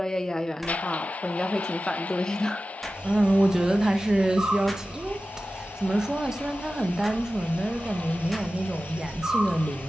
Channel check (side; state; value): both; normal; correlation 0.94